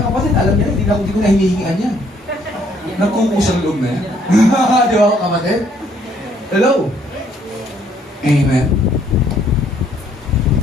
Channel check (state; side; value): normal; both; correlation 0.65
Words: kapatid, alam niya, hindi ko na hinihingian yan. Nagkukusang loob na yan. Di ba, kapatid? Hello? Amen?